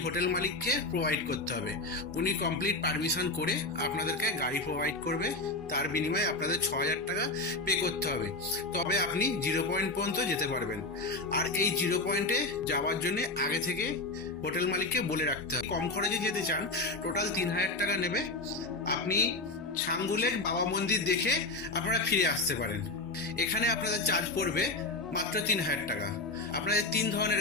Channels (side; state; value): right; quieter; 3.1 dB